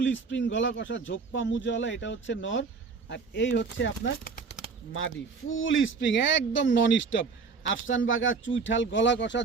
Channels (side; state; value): left; quieter; 4.9 dB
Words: স্প্রিং গলা কষা, ঝোপ্পা মুজওয়ালা। এটা হচ্ছে নর, আর এই হচ্ছে আপনার মাদি, ফুল স্প্রিং একদম নন স্টপ। আফসান বাঘা, চুইঠাল, গলা কষা,